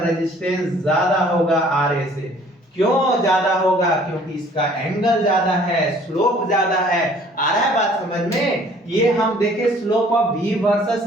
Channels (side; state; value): both; normal; correlation 0.55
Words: ज्यादा होगा RA से, क्यों ज्यादा होगा, क्योंकि इसका एंगल ज्यादा है, स्लोप ज्यादा है, आ रहा है बात समझ में। ये हम देखे slope of v